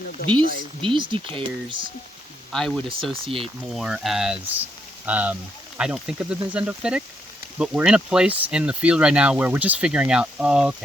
These decayers, I would associate more as, I don't think of them as endophytic, but we're in a place in the field right now where we're just figuring out, oh,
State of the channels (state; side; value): normal; both; correlation 0.76